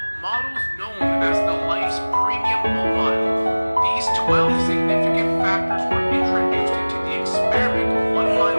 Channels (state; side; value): inverted; both; correlation -1.00